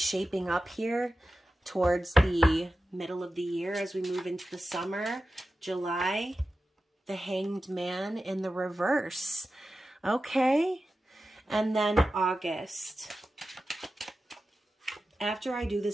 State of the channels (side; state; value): both; normal; correlation 0.93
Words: up here towards the middle of the year as we move into the summer. July, the Hanged Man in the reverse. Okay. And then August. After I do